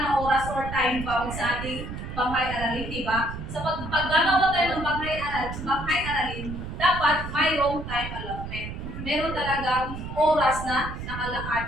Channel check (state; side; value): noise; right; rumble, 8 dB below the sound